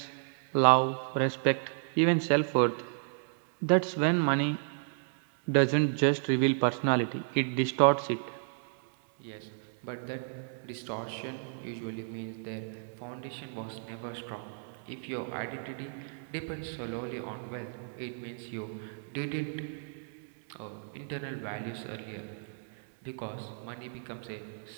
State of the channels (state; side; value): silent; left; digital silence